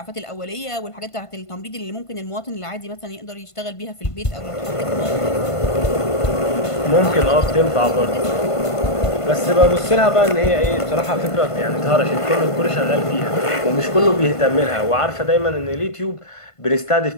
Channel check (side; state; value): right; late; 1.5 ms